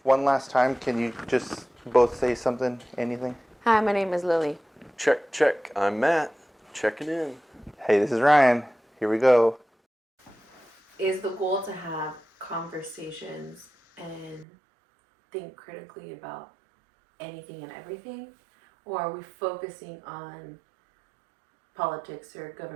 one last time, can you just both say something, anything? Hi, my name is Lily. Check, check. I'm Matt. Checking in. Hey, this is Ryan. Here we go. Is the goal to have conversations and think critically about anything and everything? Or are we focusing on politics or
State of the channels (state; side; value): drops out; left; at 14.5 s